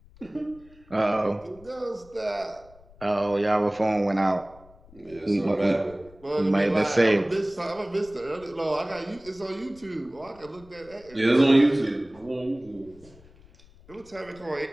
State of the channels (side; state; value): left; noise; rumble, 25 dB below the sound